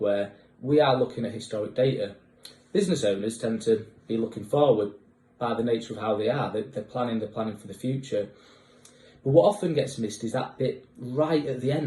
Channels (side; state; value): both; identical; correlation 1.00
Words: we are looking at historic data. Business owners tend to be looking forward by the nature of how they are. They're planning for the future. But what often gets missed is that bit right at the